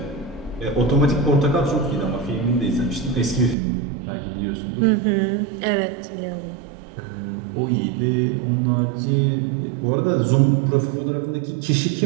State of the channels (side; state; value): left; drops out; at 3.6 s